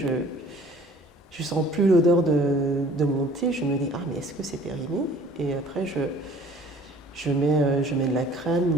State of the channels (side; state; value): both; normal; correlation 0.52